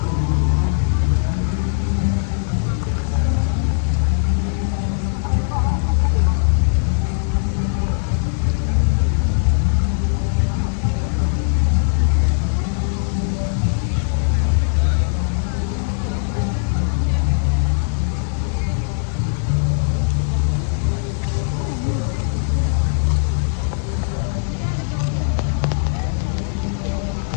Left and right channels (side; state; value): right; silent; 56 dB below the other